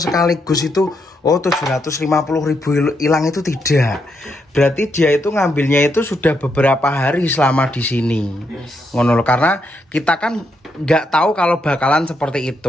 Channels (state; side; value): normal; both; correlation 0.79